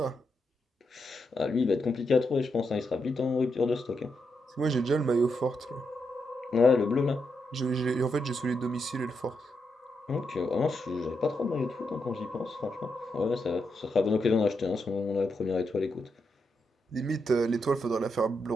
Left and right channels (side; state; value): both; normal; correlation 0.83